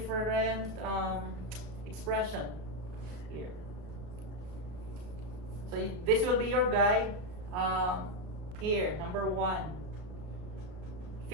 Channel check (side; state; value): left; late; 33 ms